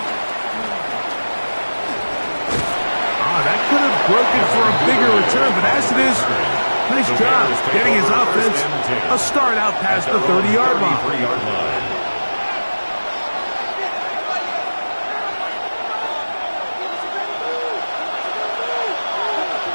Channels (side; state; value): both; inverted; correlation -1.00